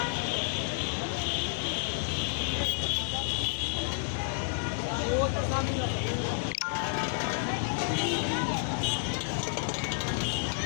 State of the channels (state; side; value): silent; right; digital silence